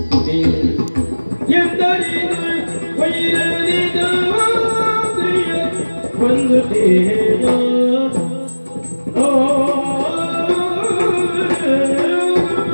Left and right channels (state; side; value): inverted; both; correlation -1.00